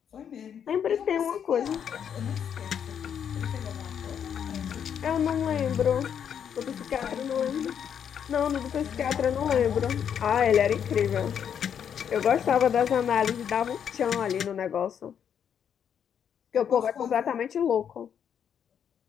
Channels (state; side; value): quieter; right; 8.3 dB